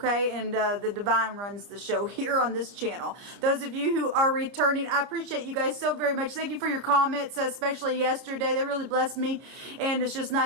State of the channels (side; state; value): left; late; 30 ms